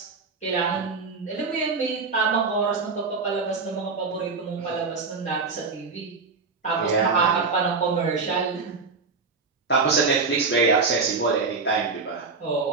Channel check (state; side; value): quieter; left; 4.4 dB